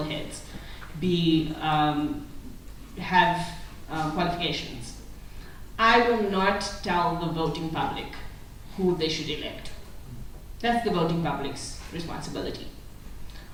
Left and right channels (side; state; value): both; identical; correlation 1.00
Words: heads, have qualifications. I will not tell the voting public who they should elect. That's the voting public's responsibility.